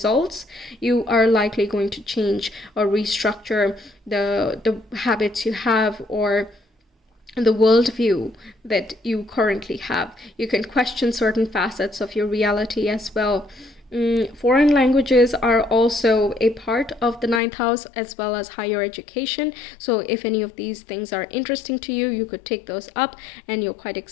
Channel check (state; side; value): drops out; right; at 17.4 s